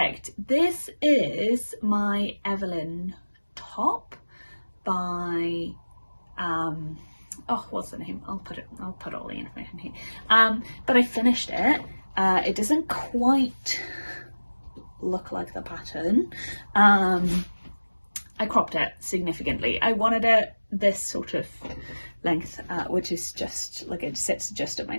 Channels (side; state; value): both; inverted; correlation -1.00